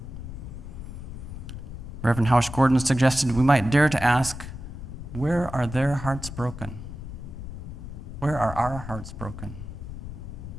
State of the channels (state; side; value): noise; left; rumble, 10 dB below the sound